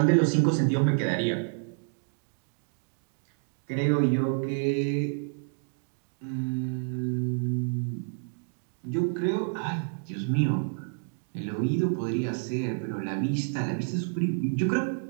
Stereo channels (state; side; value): silent; left; digital silence